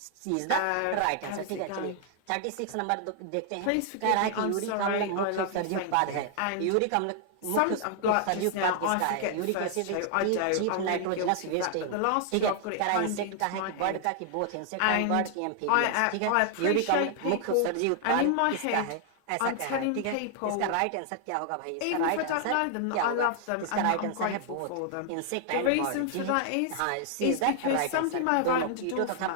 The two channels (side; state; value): both; different; correlation 0.00